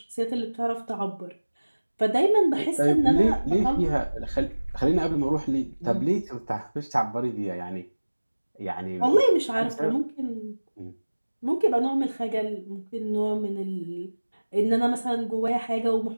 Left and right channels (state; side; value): inverted; both; correlation -1.00